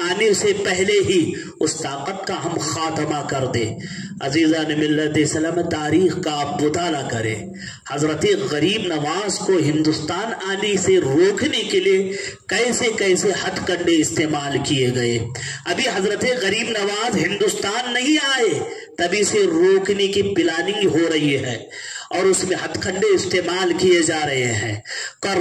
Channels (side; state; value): both; identical; correlation 1.00